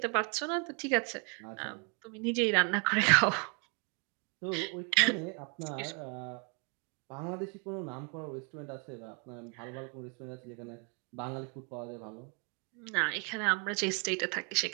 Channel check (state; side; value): quieter; left; 36.9 dB